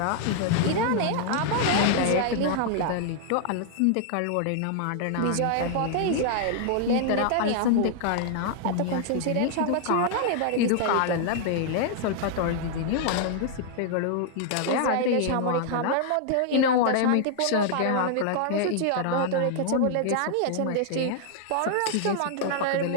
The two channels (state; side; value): different; both; correlation -0.01